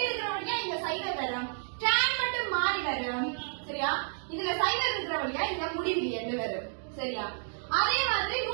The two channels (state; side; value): silent; left; digital silence